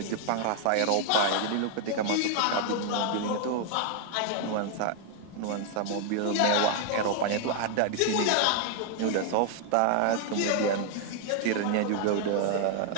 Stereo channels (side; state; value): both; different; correlation 0.00